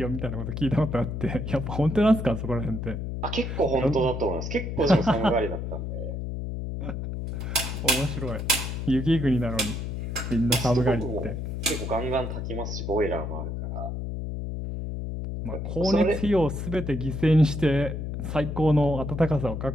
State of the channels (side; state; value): left; noise; hum, 4 dB below the sound